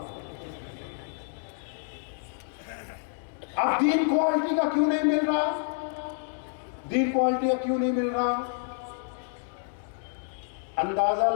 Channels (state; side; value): silent; right; digital silence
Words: اب دین کوالٹی کا کیوں نہیں مل رہا؟ دین کوالٹی کا کیوں نہیں مل رہا؟ اندازہ